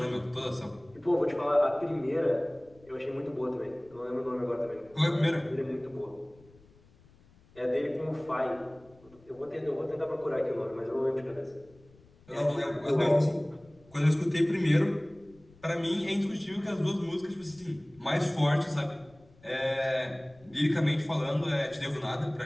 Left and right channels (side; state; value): left; noise; rumble, 27 dB below the sound